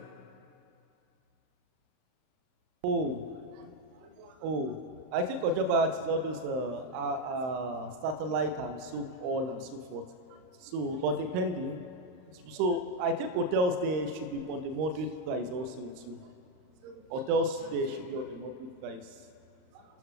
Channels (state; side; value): late; left; 39 ms